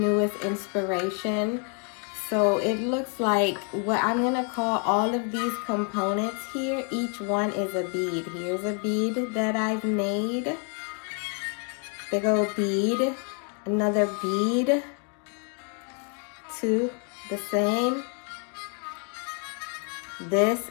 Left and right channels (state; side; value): quieter; right; 39.8 dB